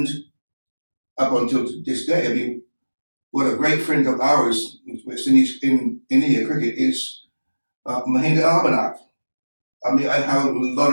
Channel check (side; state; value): both; inverted; correlation -1.00